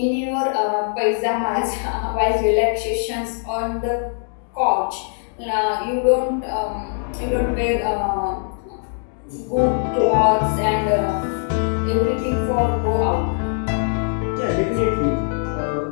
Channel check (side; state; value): right; silent; 65 dB below the other